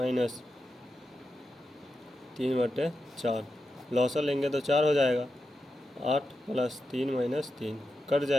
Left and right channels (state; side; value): normal; both; correlation 0.89